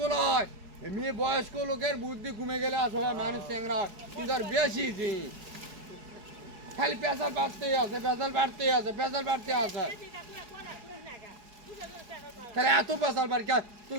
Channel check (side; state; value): left; late; 4.8 ms